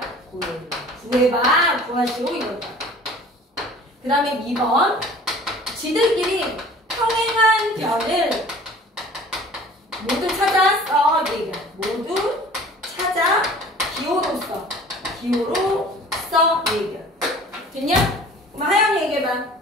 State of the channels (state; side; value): normal; both; correlation 0.46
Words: 구해봐. 구하시오 이거다. 그 다음에 2번 지들끼리 평행한 변을 모두 찾아 써. 얘기야. 모두 찾아 기호로 써. 기호로 써. 얘기야. 됐냐? 그럼 하영이 얘기해봐.